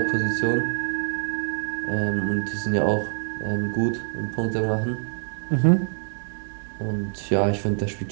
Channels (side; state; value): left; silent; 62 dB below the other